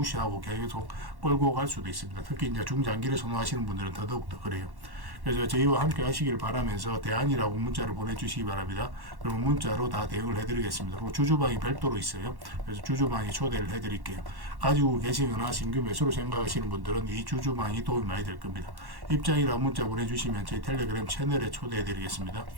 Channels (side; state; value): left; late; 1.1 ms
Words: 계속 끌고 갈 수도 있습니다. 특히 이제 중장기를 선호하시는 분들은 더더욱 더 그래요. 그래서 저희와 함께 하시길 바라면서 대안이라고 문자를 보내주시기 바랍니다. 그러면 문자로 다 대응을 해드리겠습니다. 그리고 주주방이 별도로 있어요. 그래서 주주방에 초대를 해드릴게요. 가지고 계시거나 신규 매수로 생각하시는 분들은 이 주주방이 도움이 많이 될 겁니다. 입장이라고 문자 보내주시면 저희 텔레그램 채널에 초대해드리겠습니다.